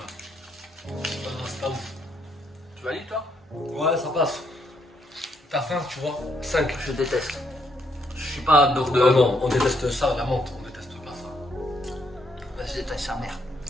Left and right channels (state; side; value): normal; both; correlation 0.74